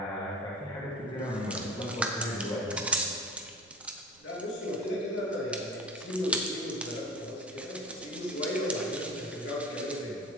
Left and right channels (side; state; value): right; noise; rumble, 30 dB below the sound